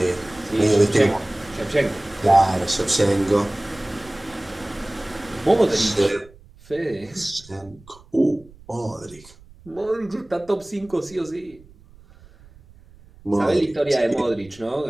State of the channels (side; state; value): right; noise; rumble, 25 dB below the sound